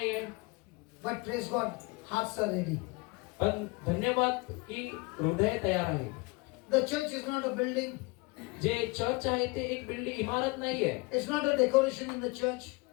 But praise God, hearts are ready. पण धन्यवाद की हृदय तयार आहे. The church is not a building. जे चर्च आहे ते एक बिल्डिंग इमारत नाहीये. It's not a decoration in the church.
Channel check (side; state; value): right; quieter; 26.8 dB